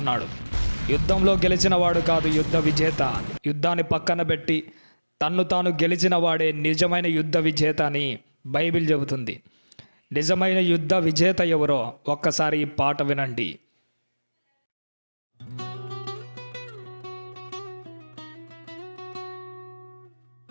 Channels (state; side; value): inverted; both; correlation -1.00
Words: యుద్ధంలో గెలిచిన వాడు కాదు యుద్ధ విజేత. యుద్ధాన్ని పక్కన పెట్టి తన్ను తాను గెలిచిన వాడే నిజమైన యుద్ధ విజేత అని బైబిల్ చెబుతుంది. నిజమైన యుద్ధ విజేత ఎవరో ఒక్కసారి ఈ పాట వినండి.